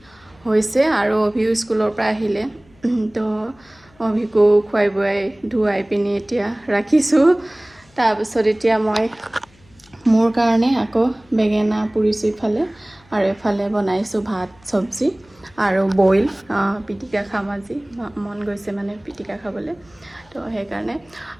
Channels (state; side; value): noise; left; hum, 30 dB below the sound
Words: হৈছে আৰু অভিও স্কুলৰ পৰা আহিলে তো অভিকো খুৱাই বুৱাই ধুৱাই পিনে এতিয়া ৰাখিছো তাৰপিছত এতিয়া মই মোৰ কাৰণে আকৌ বেঙেনা পুৰিছো ইফালে আৰু এফালে বনাইছো ভাত সবজি আৰু বইল পিটিকা খাম আজি মন গৈছে মানে পিটিকা খাবলৈ তো সেইকাৰণে